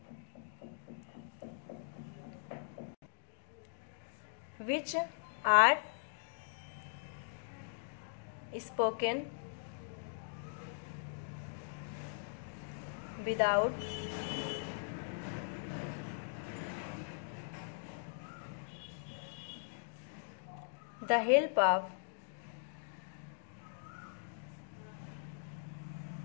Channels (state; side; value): silent; right; digital silence